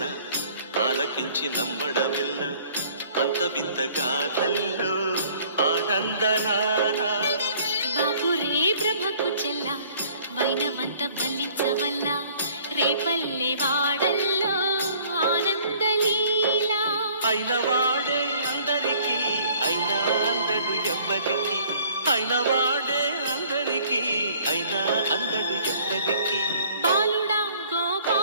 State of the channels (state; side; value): inverted; both; correlation -0.56